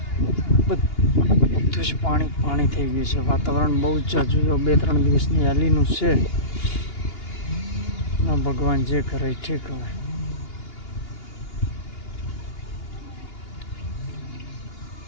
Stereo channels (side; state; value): right; late; 2.8 ms